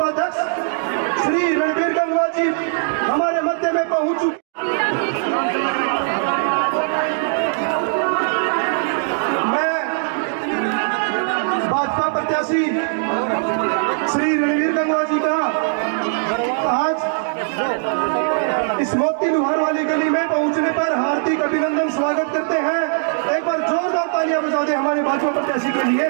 श्री रणवीर गंगवा जी हमारे मध्य में पहुंच चुके। मैं भाजपा प्रत्याशी श्री रणवीर गंगवा जी का आज इस मोती लुहार वाली गली में पहुंचने पर हार्दिक अभिनंदन स्वागत करते हैं। एक बार जोरदार तालियां बजा दे हमारे भाजपा प्रत्याशी के लिए।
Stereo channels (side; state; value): left; silent; digital silence